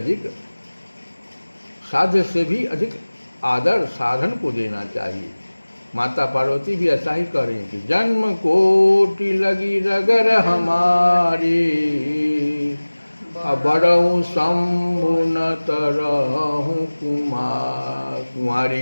से भी अधिक आदर साधन को देना चाहिए। माता पार्वती भी ऐसा ही कह रही हैं कि जन्म कोटि लगी रगर हमारी, बड़ऊ शंभु न तरहु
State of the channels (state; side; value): inverted; both; correlation -1.00